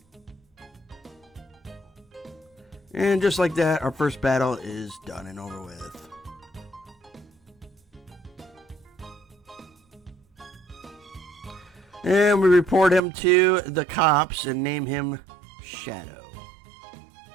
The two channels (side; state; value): left; drops out; at 13.0 s